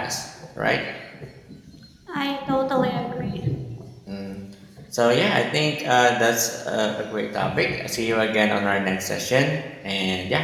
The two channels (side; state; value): both; identical; correlation 1.00